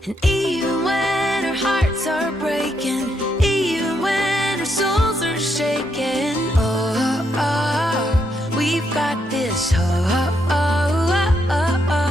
And even when our hearts are breaking, even when our souls are shaking, we've got this hope.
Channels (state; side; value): normal; both; correlation 0.78